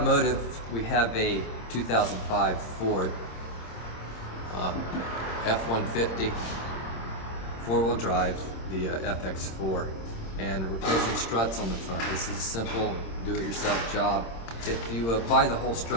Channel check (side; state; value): right; late; 26 ms